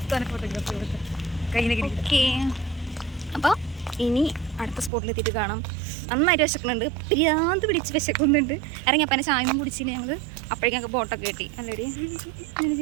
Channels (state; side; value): drops out; left; at 4.9 s